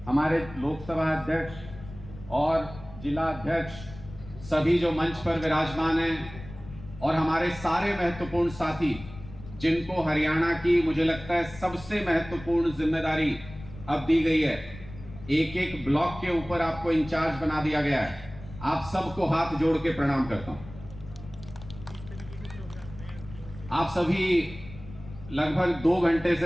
हमारे लोकसभा अध्यक्ष और जिला अध्यक्ष, सभी जो मंच पर विराजमान हैं, और हमारे सारे महत्वपूर्ण साथी जिनको हरियाणा की मुझे लगता है सबसे महत्वपूर्ण जिम्मेदारी अब दी गई है। एक एक ब्लॉक के ऊपर आपको इंचार्ज बना दिया गया है। आप सबको हाथ जोड़ के प्रणाम करता हूं। आप सभी लगभग 2 घंटे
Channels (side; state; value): left; noise; rumble, 16 dB below the sound